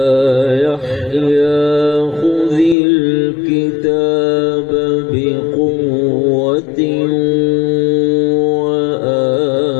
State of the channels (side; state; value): right; drops out; at 2.8 s